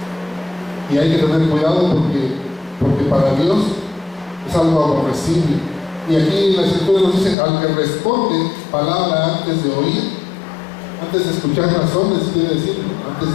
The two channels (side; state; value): right; drops out; at 7.4 s